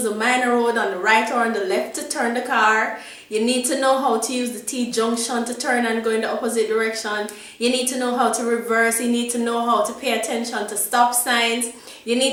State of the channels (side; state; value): both; identical; correlation 1.00